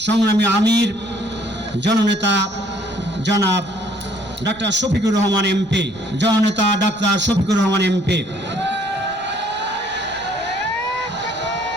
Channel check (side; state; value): right; noise; rumble, 24 dB below the sound